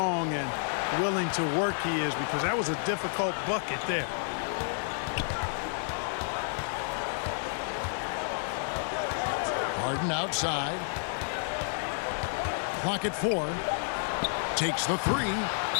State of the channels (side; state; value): right; silent; 58 dB below the other